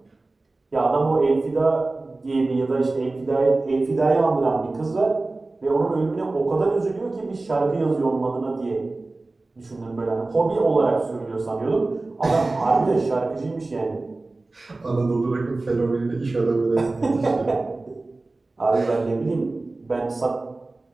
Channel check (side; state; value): left; quieter; 3.2 dB